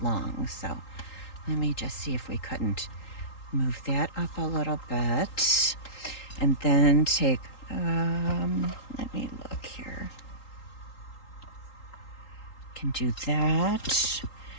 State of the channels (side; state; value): right; late; 3.8 ms